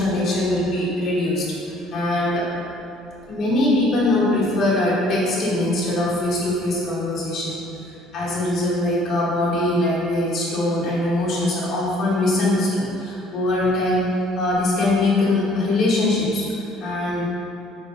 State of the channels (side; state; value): both; normal; correlation 0.58